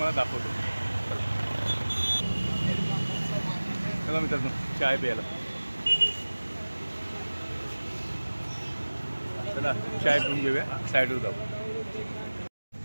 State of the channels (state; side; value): inverted; both; correlation -1.00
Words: दाखवतो. चला मित्रांनो चाय प्यायला. चला चाय पिऊन घेऊया, साईडवर जाऊ.